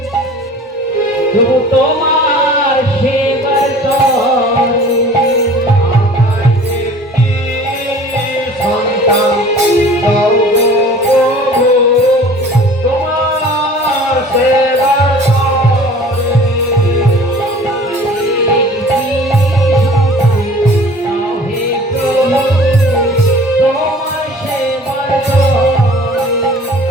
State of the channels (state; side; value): normal; both; correlation 0.46